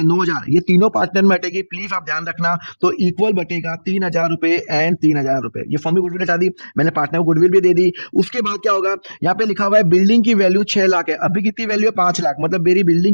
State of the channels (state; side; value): inverted; both; correlation -1.00